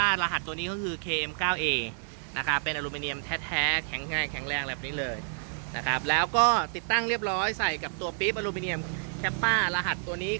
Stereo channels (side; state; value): left; silent; digital silence